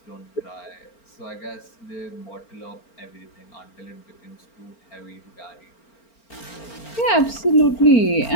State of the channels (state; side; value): late; right; 4.4 ms